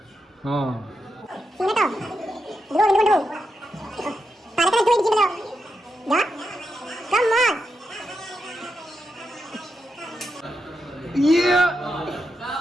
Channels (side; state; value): both; normal; correlation 0.86